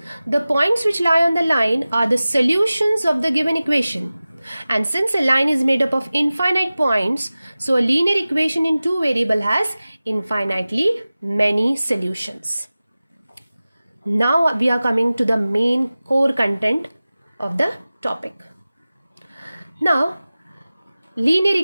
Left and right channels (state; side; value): inverted; both; correlation -0.97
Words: The points which lie on the line are the solutions of the given equation. And since a line is made up of infinite points, so a linear equation in two variable has infinitely many solutions. Now we are coming to the main core content of the topic. Now, linear